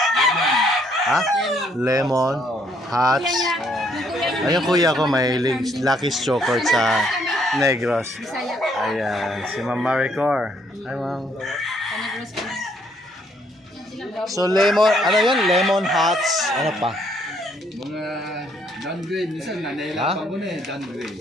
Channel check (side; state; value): both; normal; correlation 0.68